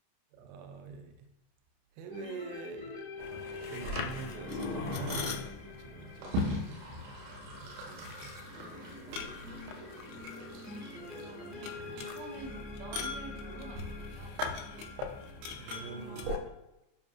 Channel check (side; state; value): left; late; 29 ms